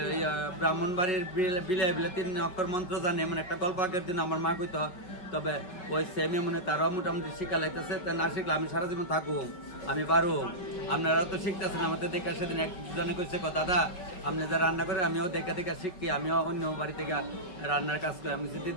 ব্রাহ্মণ বাড়ির বিলে বিলে 3 অক্ষর মন্ত্র জানে, এমন একটা গল্প আগের দিন আমার মা কইতো। তবে ওই সেমে মনে তারাও মোটামুটি শিক্ষা লাইতেছে। তা না শিখলে আমি সারা জীবন থাকুক, আমি পারো। আপনারা তো শিখতেছেন আমাদের দেখে। সেদিন একজনে কইছে দাদা আপনি যা রান্না করে আমিও দেখে দেখে শিখি, আমিও অন্য বাড়ি থেকে রান্নার কাজ করি। আমি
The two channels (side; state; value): right; late; 5.5 ms